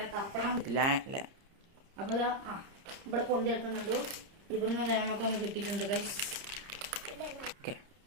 തപ്പണം. അപ്പൊ ഇവിടെ പൊന്തി എടുക്കുന്നുണ്ട്. ഇവിടുന്ന് നമുക്കൊന്ന് കിട്ടിയിട്ടുണ്ട് ഗൈസ്.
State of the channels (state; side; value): late; left; 30 ms